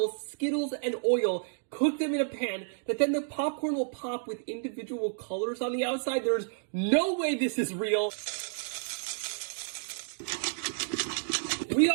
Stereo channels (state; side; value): silent; left; digital silence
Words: Skittles, and oil, cook them in a pan, that then the popcorn will pop with individual colors on the outside. There's no way this is real. We